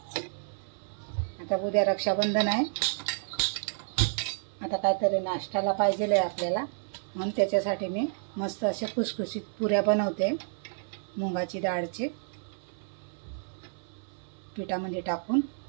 आता उद्या रक्षाबंधन आहे, आता काहीतरी नाश्त्याला पाहिजे आहे आपल्याला, म्हणून त्याच्यासाठी मी मस्त असे खुसखुशीत पुऱ्या बनवते। मुगाची डाळचे पिठामध्ये टाकून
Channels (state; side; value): silent; left; 58 dB below the other